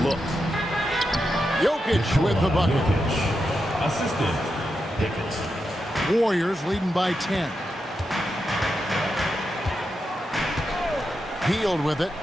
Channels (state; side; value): normal; both; correlation 0.87